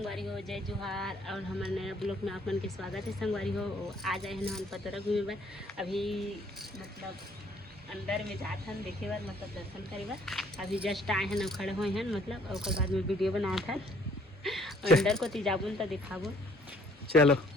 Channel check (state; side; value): normal; both; correlation 0.61